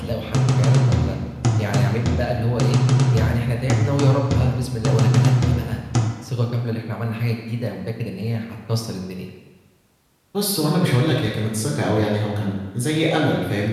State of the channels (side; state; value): both; identical; correlation 1.00